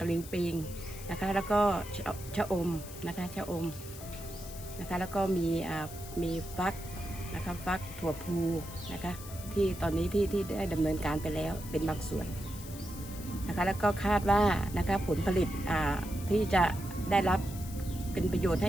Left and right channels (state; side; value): noise; left; hiss, 14 dB below the sound